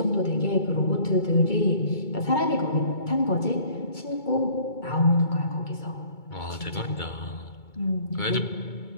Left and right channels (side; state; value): right; late; 2.2 ms